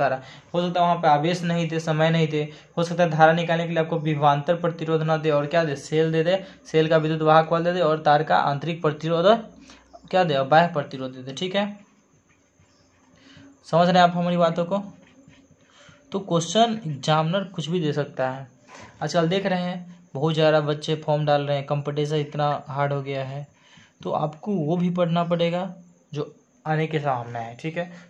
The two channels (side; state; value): both; identical; correlation 1.00